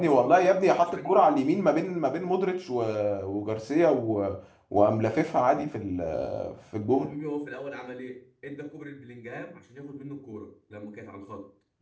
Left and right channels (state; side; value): identical; both; correlation 1.00